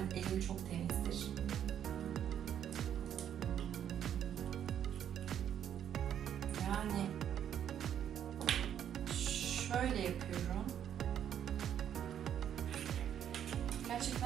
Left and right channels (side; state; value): left; quieter; 9.7 dB